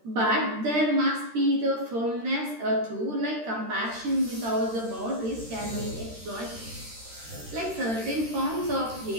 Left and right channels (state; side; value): late; left; 13 ms